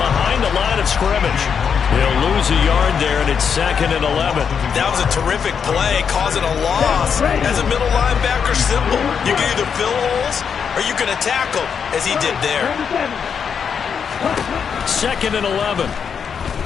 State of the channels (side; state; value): right; quieter; 6.9 dB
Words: the line of scrimmage. He'll lose a yard there, and it's 2nd and 11. That was a terrific play, causing a loss. As a middle linebacker, simple. You can either fill holes or you can attack them, as he did there. 2nd and 11.